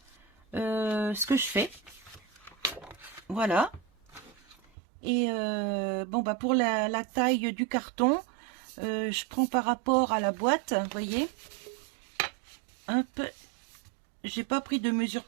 ce que je fais. Voilà. Et pour la taille du carton, je prends par rapport à la boîte, vous voyez. Hop, j'ai pas pris de mesure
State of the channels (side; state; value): left; drops out; at 4.5 s